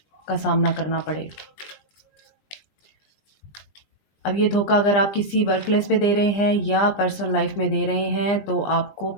का सामना करना पड़े। अब ये धोखा अगर आप किसी वर्क प्लेस पे दे रहे हैं या पर्सनल लाइफ में दे रहे हैं तो आपको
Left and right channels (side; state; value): right; late; 20 ms